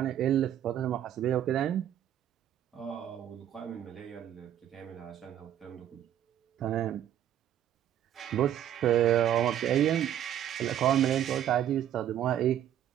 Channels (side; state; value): left; quieter; 10.9 dB